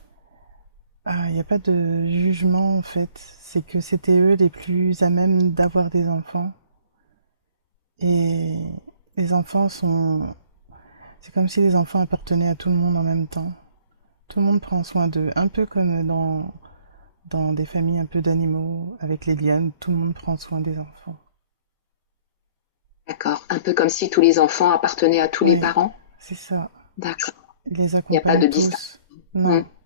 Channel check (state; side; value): inverted; both; correlation -0.56